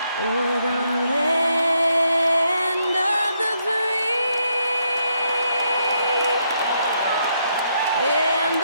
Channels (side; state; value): both; inverted; correlation -0.76